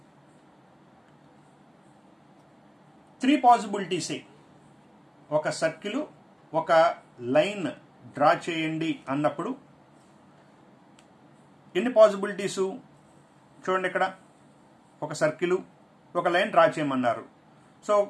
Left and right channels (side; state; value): both; identical; correlation 1.00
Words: 3 పాసిబిలిటీసే. ఒక సర్కిల్, ఒక లైన్ డ్రా చేయండి అన్నప్పుడు ఎన్ని పాసిబిలిటీసు? చూడండి, ఇక్కడ ఒక సర్కిల్, ఒక లైన్ డ్రా చేయమన్నారు. సో